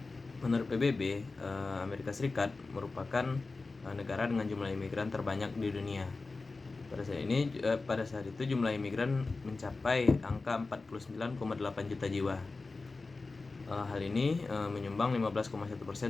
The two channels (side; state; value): right; quieter; 3.7 dB